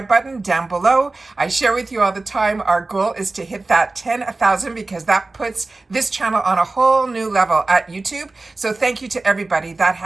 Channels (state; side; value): quieter; left; 3.3 dB